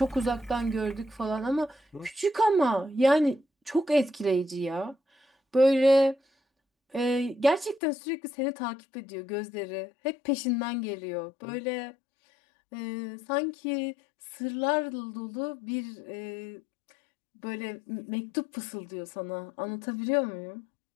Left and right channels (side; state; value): right; drops out; at 7.8 s